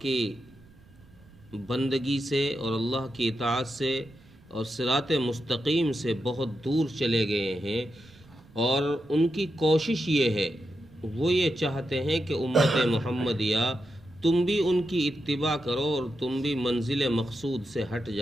کی بندگی سے اور اللہ کی اطاعت سے اور صراط مستقیم سے بہت دور چلے گئے ہیں۔ اور ان کی کوشش یہ ہے، وہ یہ چاہتے ہیں کہ امت محمدیہ تم بھی ان کی اتباع کرو اور تم بھی منزل مقصود سے ہٹ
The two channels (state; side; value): noise; right; rumble, 26 dB below the sound